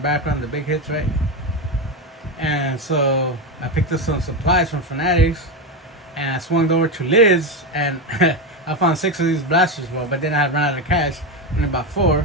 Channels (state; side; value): normal; both; correlation 0.14